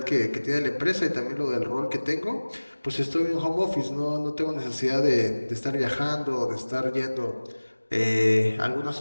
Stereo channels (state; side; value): inverted; both; correlation -1.00